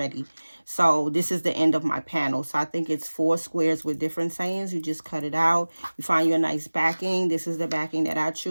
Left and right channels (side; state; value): both; inverted; correlation -1.00